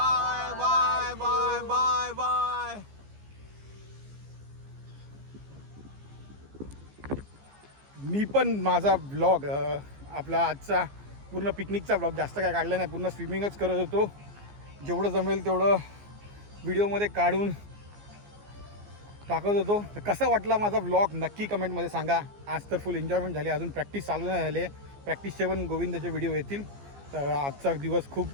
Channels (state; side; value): late; left; 15 ms